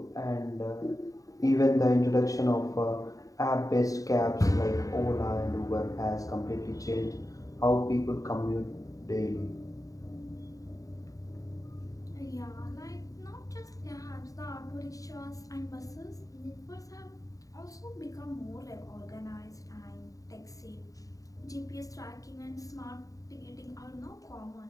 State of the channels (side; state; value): right; late; 0.16 ms